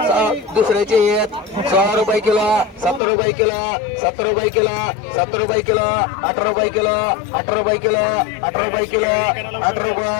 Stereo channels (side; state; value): right; drops out; at 3.0 s